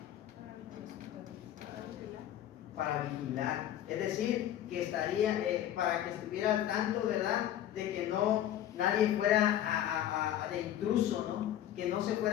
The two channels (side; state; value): right; quieter; 11.6 dB